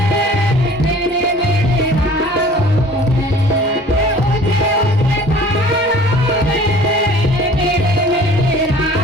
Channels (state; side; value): normal; both; correlation 0.48